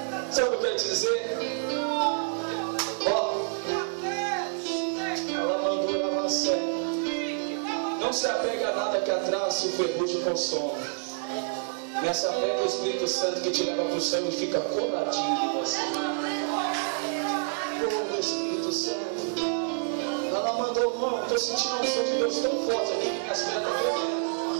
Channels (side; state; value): left; silent; digital silence